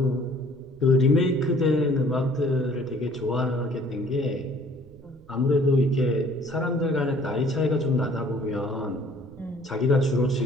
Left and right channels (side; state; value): right; noise; rumble, 27 dB below the sound